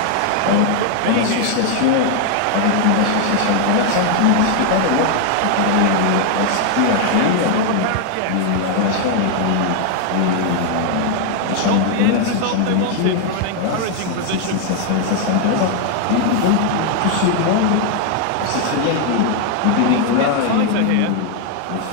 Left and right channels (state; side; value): different; both; correlation 0.00